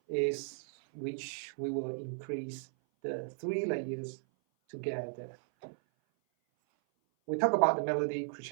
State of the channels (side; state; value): left; silent; 54 dB below the other